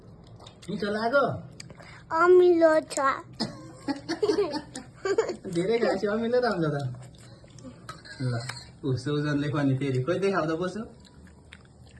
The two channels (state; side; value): identical; both; correlation 1.00